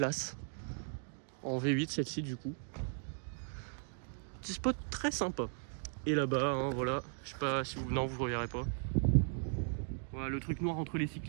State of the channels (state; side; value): silent; left; 53 dB below the other